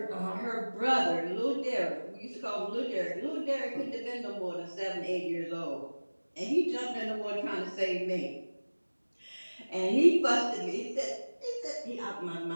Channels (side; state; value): both; inverted; correlation -1.00